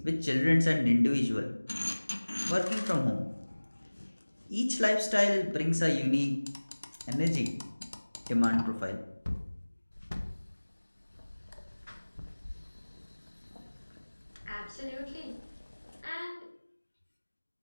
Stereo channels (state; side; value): inverted; both; correlation -1.00